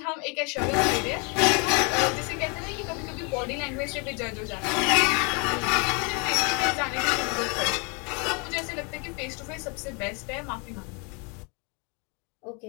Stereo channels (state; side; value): quieter; right; 33.4 dB